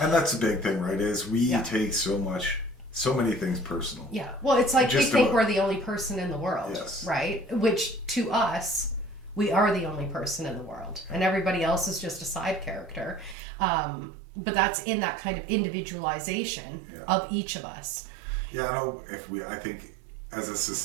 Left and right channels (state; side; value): drops out; left; at 13.4 s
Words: that's a big thing, right? Is we take so many things personal. Yeah. Well, it's like we think we're the only person in the world, right? Which to us, we are the only person in the world, and everybody else is just a side character. But that's in that kind of individualization of each of us. Yeah, I think as a